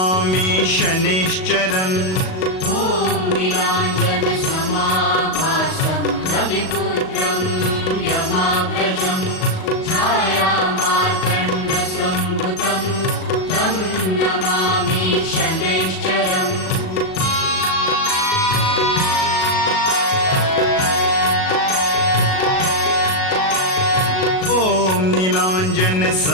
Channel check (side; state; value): right; late; 38 ms